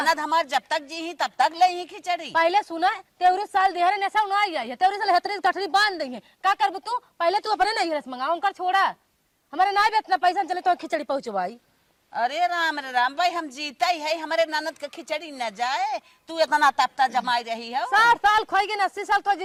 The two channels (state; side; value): identical; both; correlation 1.00